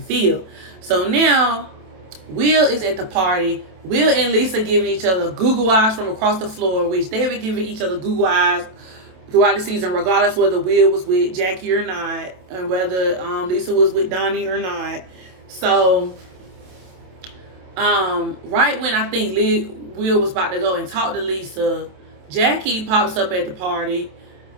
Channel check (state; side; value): late; left; 27 ms